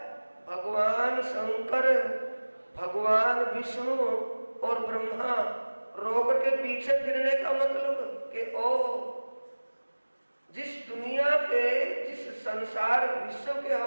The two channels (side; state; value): both; inverted; correlation -1.00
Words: भगवान शंकर, भगवान विष्णु और ब्रह्मा। रो करके पीछे फिरने का मतलब कि ओ जिस दुनिया के, जिस संसार विश्व के